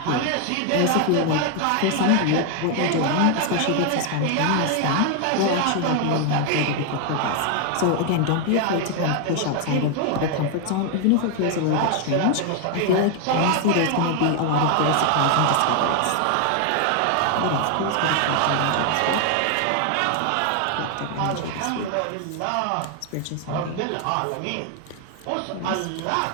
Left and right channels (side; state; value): both; different; correlation 0.01